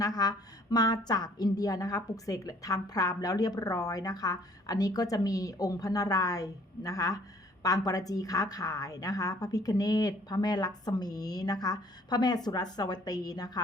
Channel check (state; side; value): normal; both; correlation 0.58